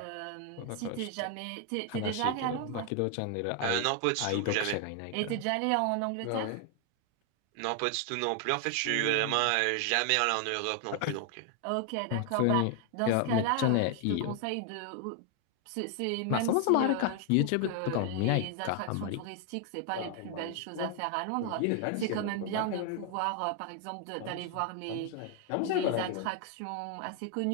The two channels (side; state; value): both; different; correlation 0.00